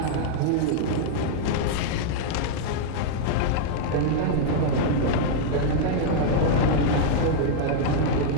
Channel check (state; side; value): different; both; correlation -0.01